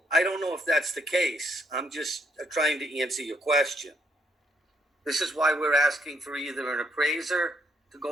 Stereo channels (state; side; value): normal; both; correlation 0.73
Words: I don't know if that's the case. I'm just trying to answer your question. This is why we're asking for either an appraiser to